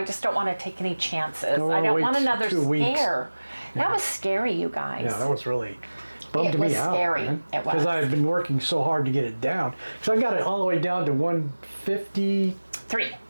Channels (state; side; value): inverted; both; correlation -1.00